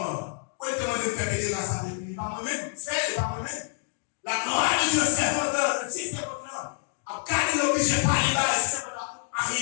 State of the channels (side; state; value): right; silent; digital silence